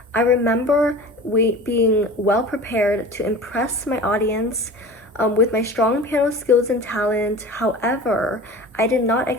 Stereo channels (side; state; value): both; normal; correlation 0.37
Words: I remember being well prepared to impress my audience with my strong piano skills and talent. However, I did not